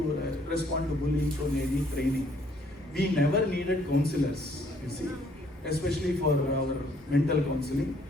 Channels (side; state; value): both; normal; correlation 0.64